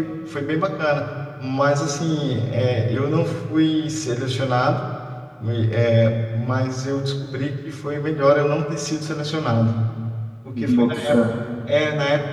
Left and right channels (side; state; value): both; identical; correlation 1.00